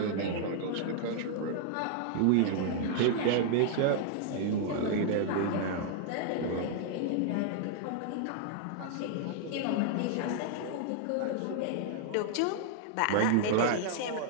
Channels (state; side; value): different; both; correlation -0.01